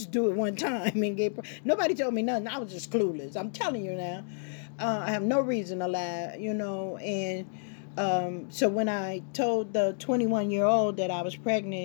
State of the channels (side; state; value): right; silent; digital silence